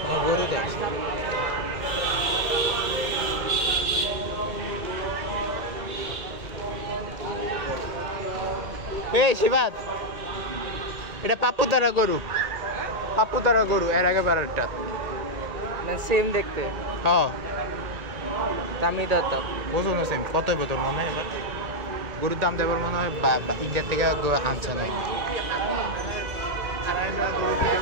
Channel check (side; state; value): left; late; 1.8 ms